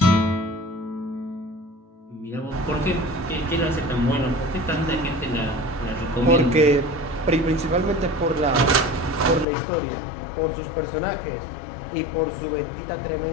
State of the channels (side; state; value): right; drops out; at 9.5 s